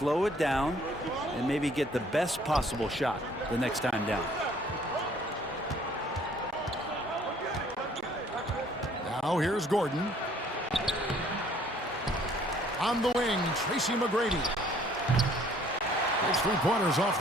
it down and maybe get the best possible shot the next time down. Now, here's Gordon. On the wing, Tracy McGrady. His three-pointers off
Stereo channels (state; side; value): normal; both; correlation 0.59